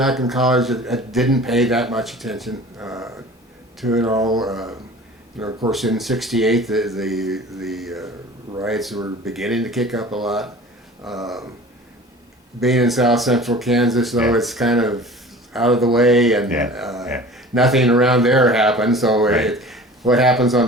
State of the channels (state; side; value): normal; both; correlation 0.42